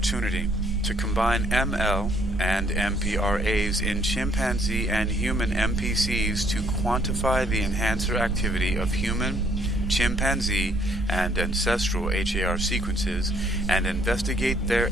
to combine ML and MPRAs in chimpanzee and human MPCs to quantify the enhancer activity of human, chimpanzee and ancestral HAR sequences and investigate their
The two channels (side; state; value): both; normal; correlation 0.66